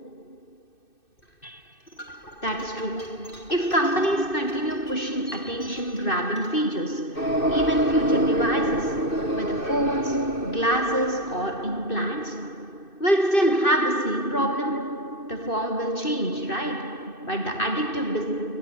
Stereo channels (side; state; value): right; late; 2.6 ms